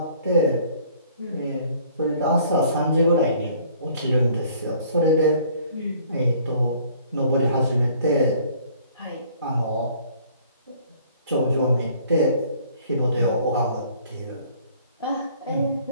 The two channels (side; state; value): both; inverted; correlation -0.56